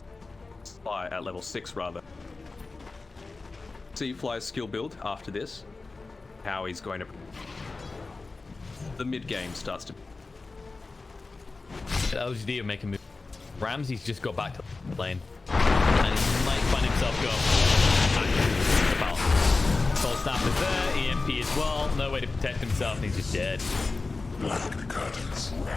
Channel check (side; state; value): right; quieter; 3.7 dB